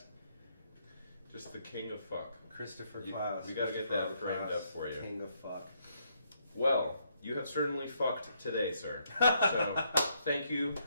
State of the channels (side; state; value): both; inverted; correlation -0.74